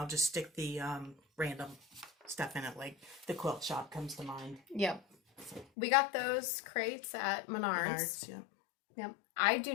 just stick the random stuff in it, like the quilt shop comes to mind. Yep. We got those crates at Menards. Yep. Yep.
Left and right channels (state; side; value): drops out; right; at 5.7 s